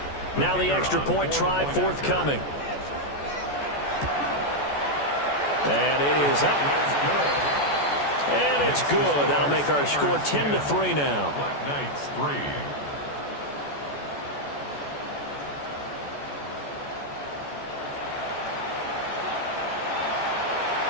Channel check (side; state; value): right; late; 14 ms